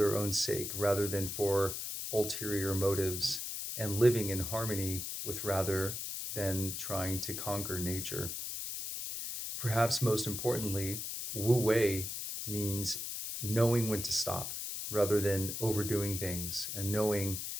own sake rather than for ulterior motives, and living in harmony with rather than trying to conquer nature. Perhaps most importantly, Wu Wei means knowing when to stop rather than overdoing things and knowing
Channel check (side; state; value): left; noise; hiss, 5 dB below the sound